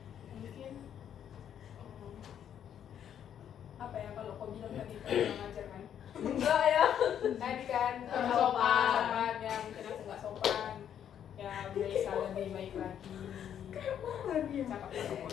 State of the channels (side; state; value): right; quieter; 9.4 dB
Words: mungkin apa ya, kalau kau bilang tadi kau kurang ajar kan? Enggak ya, tadi kan sopan ya, mungkin aku nggak sopan ya, bisa lebih baik lagi. Cakap-cakap